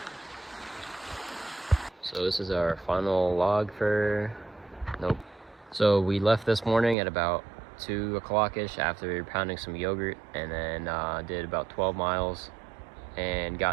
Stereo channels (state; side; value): drops out; left; at 7.0 s